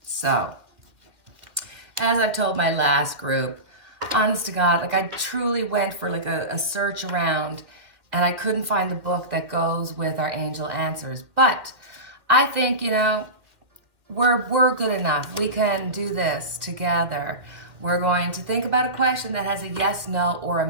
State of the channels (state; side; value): late; left; 2.1 ms